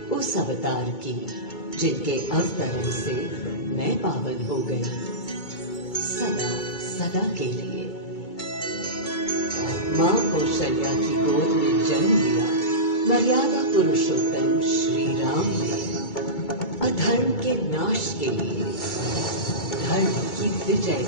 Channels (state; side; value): late; right; 2.2 ms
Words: उस अवतार की जिनके अवतरण से मैं पावन हो गई सदा सदा के लिए। मां कौशल्या की गोद में जन्म लिया मर्यादा पुरुषोत्तम श्री राम ने अधर्म के नाश के लिए, धर्म की विजय